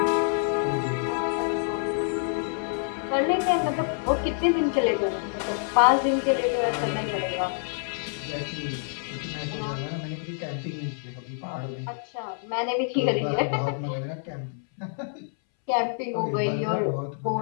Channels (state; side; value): silent; right; 60 dB below the other